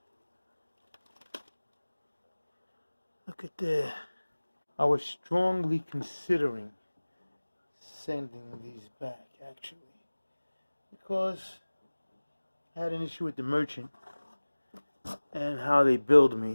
Look at that. I was strongly considering sending these back, actually, because I had an issue with the merchant and how they billed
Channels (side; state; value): both; inverted; correlation -1.00